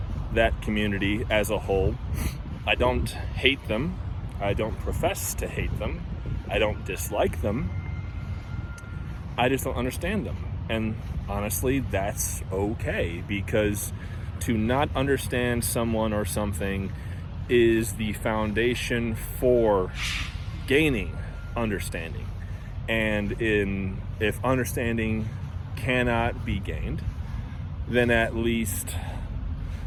that community as a whole, I don't hate them. I don't profess to hate them. I don't dislike them. I just don't understand them. And honestly, that's okay, because to not understand someone or something is the foundation for gaining understanding. And if understanding cannot be gained, then at least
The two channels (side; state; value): both; identical; correlation 1.00